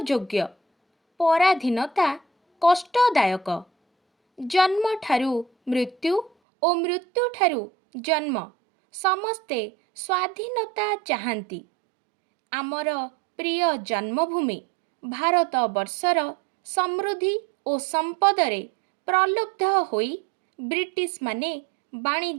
योग्य। पराधीनता कष्टदायक। जन्म ठारू मृत्यु और मृत्यु ठारू जन्म समस्ते स्वाधीनता चाहंती। आमर प्रिय जन्मभूमि भारत वर्षर समृद्धि और संपदरे प्रलुब्ध होई ब्रिटिश माने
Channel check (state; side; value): drops out; left; at 6.3 s